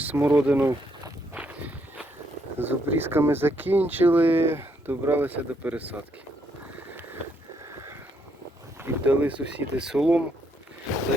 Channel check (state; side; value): normal; both; correlation 0.74